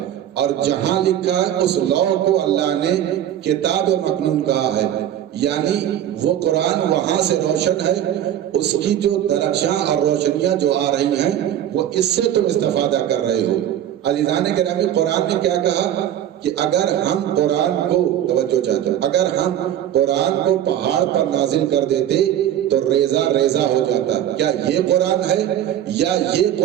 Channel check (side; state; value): left; quieter; 11.1 dB